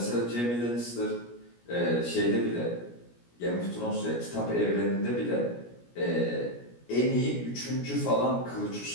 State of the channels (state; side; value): late; right; 17 ms